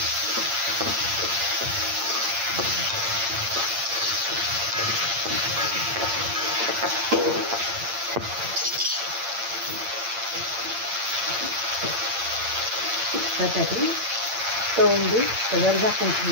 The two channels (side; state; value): left; late; 8.7 ms